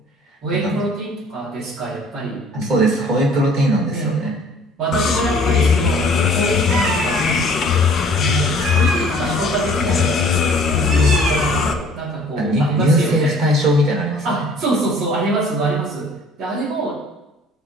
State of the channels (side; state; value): both; normal; correlation 0.53